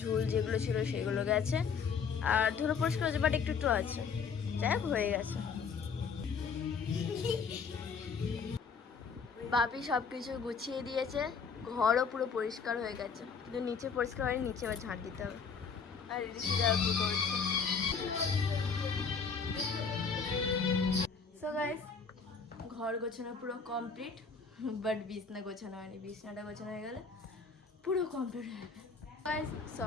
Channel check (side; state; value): right; quieter; 5.6 dB